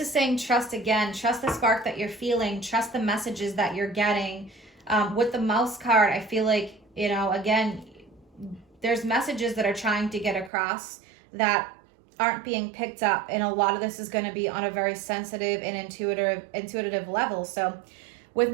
saying trust again. Trust the spark that you're feeling. Trust the messages that you're getting. With the Mouse card, I feel like, again, there's messages that are trying to get across that aren't being picked up. And a lot of this is going to be on a very sensitive and intuitive level. So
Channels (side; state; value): left; drops out; at 10.5 s